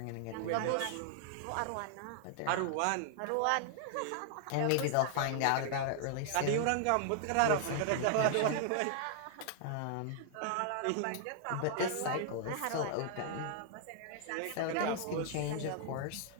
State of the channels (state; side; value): different; both; correlation -0.01